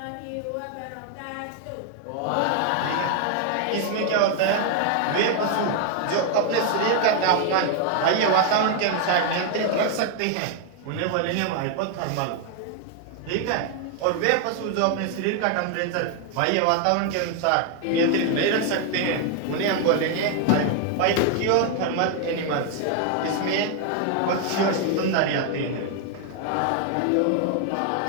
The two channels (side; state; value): both; different; correlation 0.00